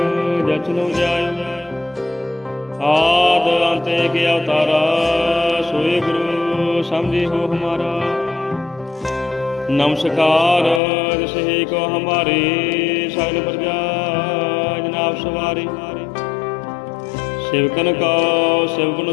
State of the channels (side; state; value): right; drops out; at 10.8 s